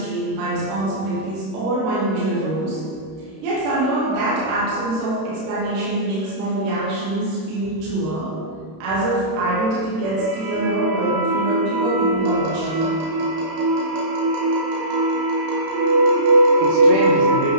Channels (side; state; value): left; late; 31 ms